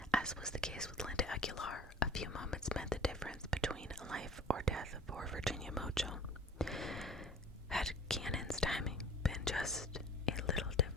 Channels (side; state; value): both; normal; correlation 0.45